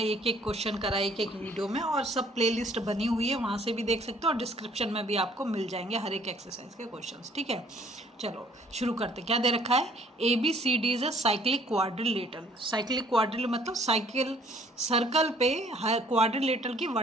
एक एक क्वेश्चन करा एक एक वीडियो में, और सब प्लेलिस्ट बनी हुई है, वहाँ से भी देख सकते हो, और डिस्क्रिप्शन में भी आपको मिल जाएंगे हर एक एक्सरसाइज के क्वेश्चंस। ठीक है, चलो शुरू करते। क्या दे रखा है? ABCD is a cyclic quadrilateral. Cyclic क्वाड्रिल मतलब साइकिल सर्कल पे क्वाड्रिलेटरल की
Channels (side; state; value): both; normal; correlation 0.59